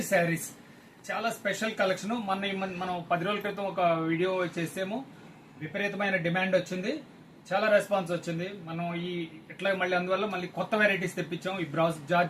శారీస్, చాలా స్పెషల్ కలెక్షన్. మనం 10 రోజుల క్రితం ఒక వీడియో చేసాము. విపరీతమైన డిమాండ్ వచ్చింది, చాలా రెస్పాన్స్ వచ్చింది. మనం ఇట్లా అందువల్ల మళ్ళీ కొత్త వెరైటీస్ తెప్పించాం. ఈ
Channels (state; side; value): identical; both; correlation 1.00